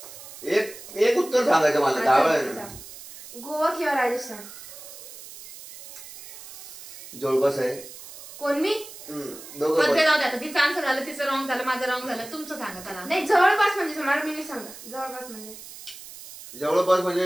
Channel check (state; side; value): noise; right; hiss, 15 dB below the sound